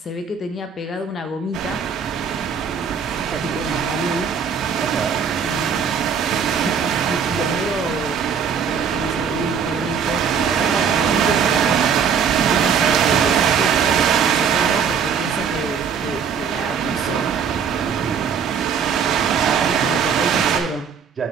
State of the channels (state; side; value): quieter; left; 6.7 dB